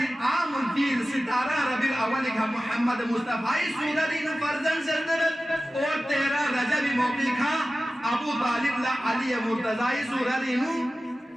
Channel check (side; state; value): both; normal; correlation 0.95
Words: عام الفیل ستارہ ربی الاول کا محمد مصطفی سوررین فرزن سردرد اور 13 رجب موقع کا ابو طالب لا علی مرتضی سوررین